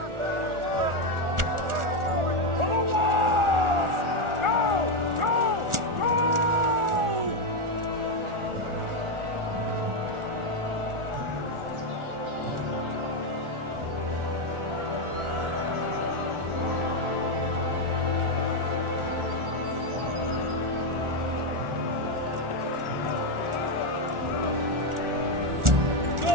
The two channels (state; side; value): late; left; 1.4 ms